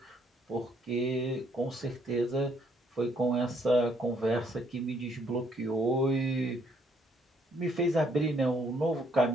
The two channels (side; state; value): both; normal; correlation 0.68